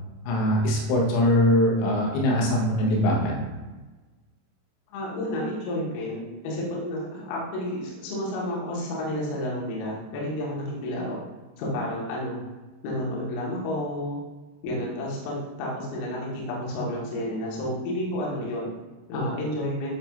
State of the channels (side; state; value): right; late; 27 ms